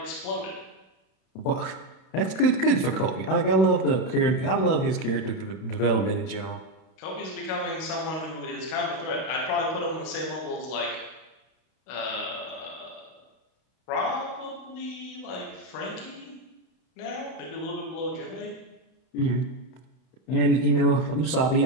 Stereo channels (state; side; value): late; right; 31 ms